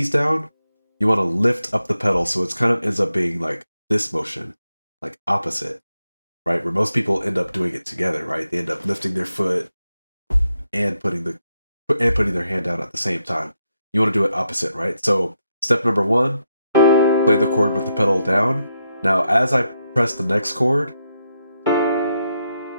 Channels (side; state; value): both; inverted; correlation -0.82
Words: down, you want to lift up the pedal, so it's kind of ends up being like this motion, like opposite, right? Where most people end up doing it together, right? They end up lifting their foot and putting their hand down at the same time. You want to do it opposite, right? So step number one, play the chord with the pedal down. Now, as I press the next chord,